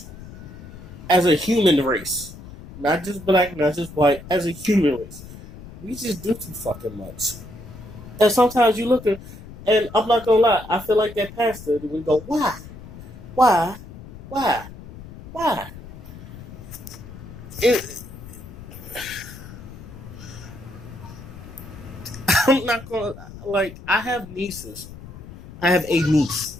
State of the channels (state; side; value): noise; left; rumble, 15 dB below the sound